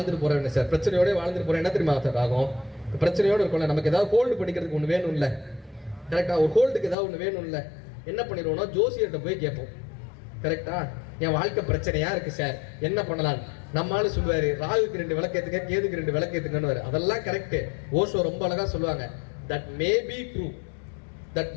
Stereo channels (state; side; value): drops out; right; at 7.0 s